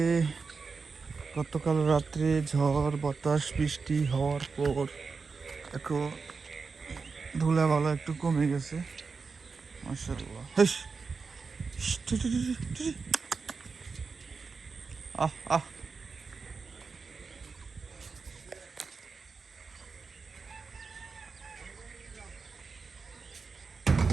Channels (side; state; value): left; quieter; 4.8 dB